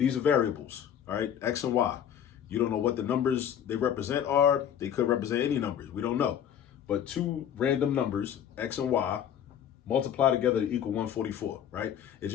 are variables, all right? X and Y. You don't know what the numbers they represent are. They could represent any numbers. We don't know. But two random numbers, X and Y, multiply together to equal 144, right? It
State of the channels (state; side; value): quieter; right; 9.4 dB